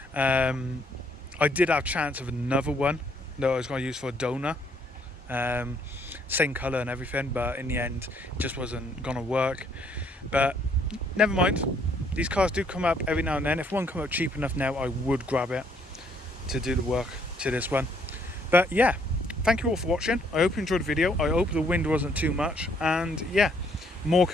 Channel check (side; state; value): both; normal; correlation 0.67